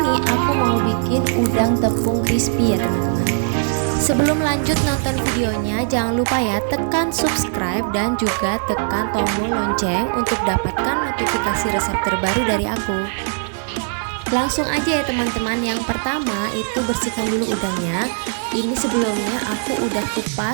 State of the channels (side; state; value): left; silent; 59 dB below the other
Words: aku mau bikin udang tepung crispy ya teman-teman. Sebelum lanjut nonton videonya, jangan lupa ya tekan subscribe dan juga tekan tombol lonceng untuk dapatkan notifikasi resep terbaru dari aku. Langsung aja ya teman-teman. Yang pertama itu bersihkan dulu udangnya. Ini sebelumnya aku udah